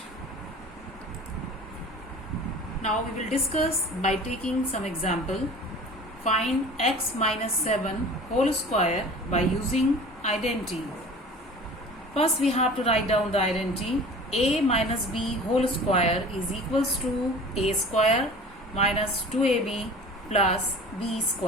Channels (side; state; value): both; normal; correlation 0.41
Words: Now we will discuss by taking some example. Find x minus 7 whole square by using identity. First we have to write down the identity. A minus b whole square is equals to a square minus 2ab plus b